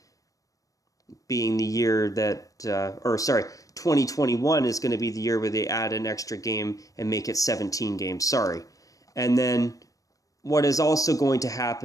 being the year that, 2021 is going to be the year where they add an extra game and make it 17 games, And then what is also going to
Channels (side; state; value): right; late; 0.17 ms